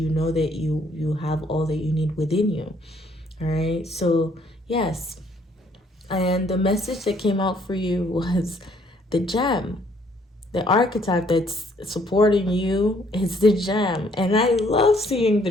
know that you have all that you need within you. All right, so yes. And the message that came out for you was the gem. The archetype that's supporting you is the gem. And I love seeing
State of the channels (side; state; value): both; normal; correlation 0.65